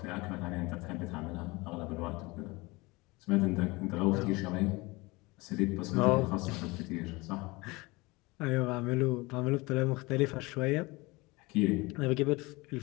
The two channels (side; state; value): right; quieter; 23.7 dB